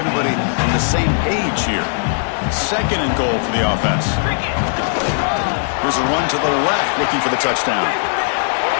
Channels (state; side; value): silent; right; 67 dB below the other